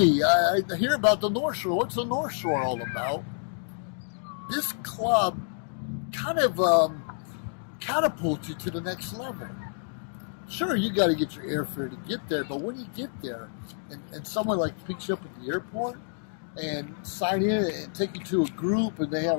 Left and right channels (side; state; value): right; silent; digital silence